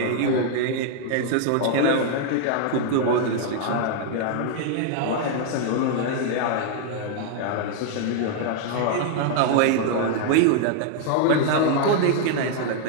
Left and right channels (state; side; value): different; both; correlation 0.00